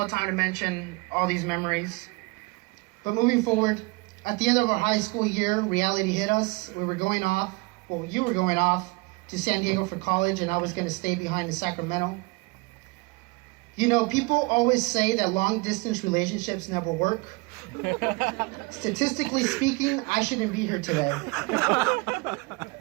time to mention all these memories. But moving forward, at the end of our high school year, reality hit us. We were going off, well, you were going off to San Diego for college, and I was going to stay behind in Sacramento. You know, people always say that long-distance relationships never work. Statistically speaking, I shouldn't be here today.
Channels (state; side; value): quieter; left; 26.9 dB